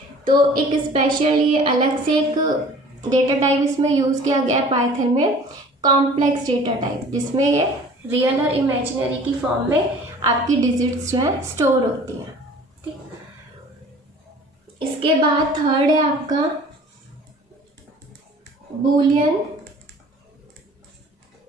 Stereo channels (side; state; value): both; normal; correlation 0.47